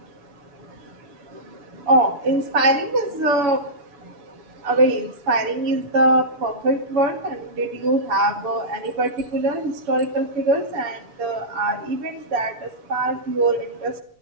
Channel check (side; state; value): left; late; 7.1 ms